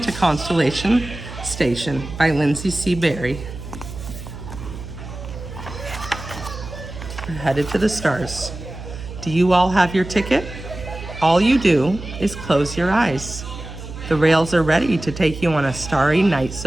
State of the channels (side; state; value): right; noise; hum, 11 dB below the sound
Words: Constellation Station by Lindsay C. Berry. We're headed to the stars. Do you all have your ticket? All you do is close your eyes. The rails are ready to take you on a starry night